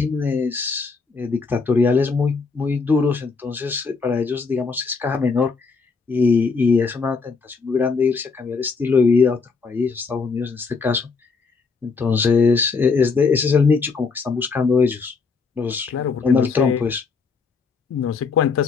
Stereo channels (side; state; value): right; quieter; 4.7 dB